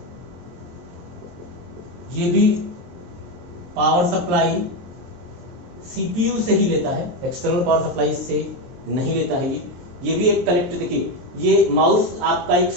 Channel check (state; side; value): late; left; 23 ms